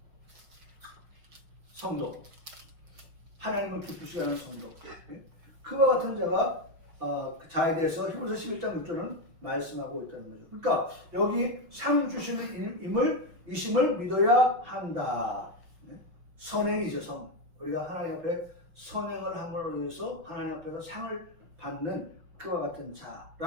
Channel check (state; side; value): late; left; 6.0 ms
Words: 성도, 하나님을 기쁘시게 하는 성도, 그와 같은 자에 대해서 히브리서 11장 6절은 말씀하고 있다는 거죠. 그러니까 여기 상 주실 이심을 믿어야 한다. 선행이죠. 우리가 하나님 앞에 선행을 함으로 인해서 하나님 앞에서 상을 받는 그와 같은